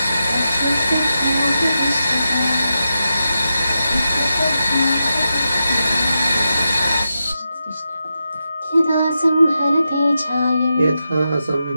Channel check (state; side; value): inverted; both; correlation -0.88